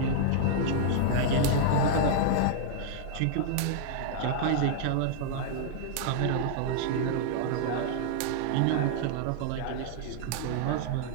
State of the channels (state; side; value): different; both; correlation -0.01